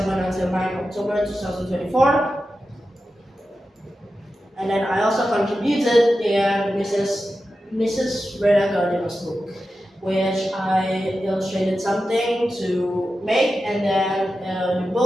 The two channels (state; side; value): normal; both; correlation 0.92